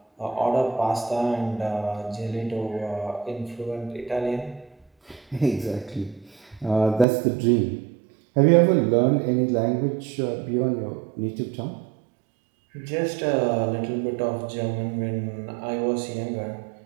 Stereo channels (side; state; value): left; drops out; at 7.1 s